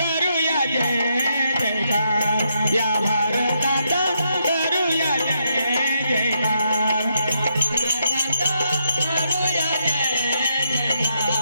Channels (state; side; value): inverted; both; correlation -0.79